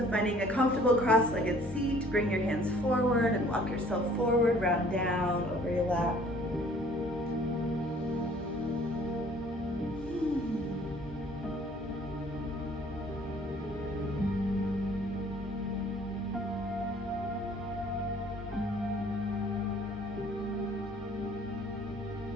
finding a comfortable cross-legged seat, bring your hands forward and walk yourself forward, round down over your lap.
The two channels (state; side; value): normal; both; correlation 0.55